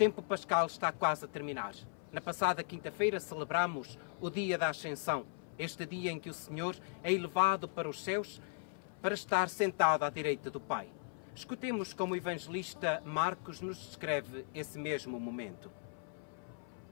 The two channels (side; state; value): right; silent; 53 dB below the other